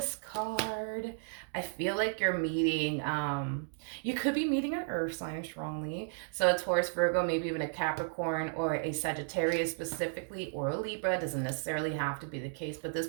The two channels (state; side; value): silent; left; digital silence